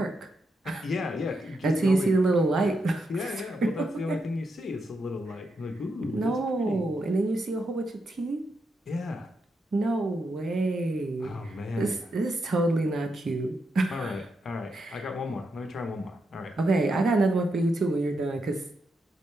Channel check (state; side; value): normal; both; correlation 0.83